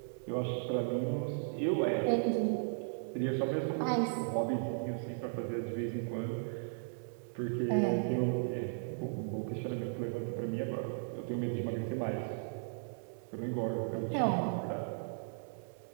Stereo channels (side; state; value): left; silent; digital silence